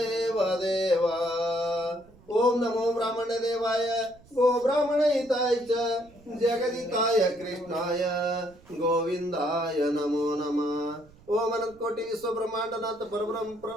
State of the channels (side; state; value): right; noise; rumble, 26 dB below the sound